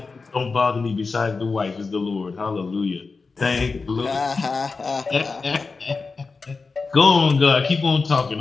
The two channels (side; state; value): right; quieter; 4.3 dB